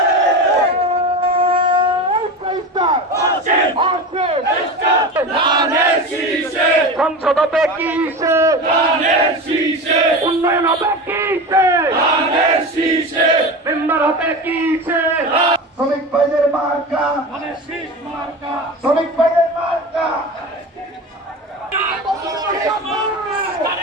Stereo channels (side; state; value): both; normal; correlation 0.27